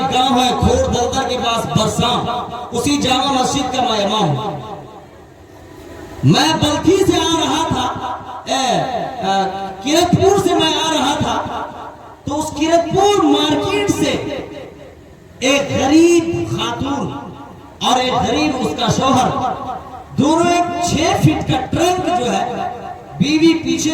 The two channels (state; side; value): identical; both; correlation 1.00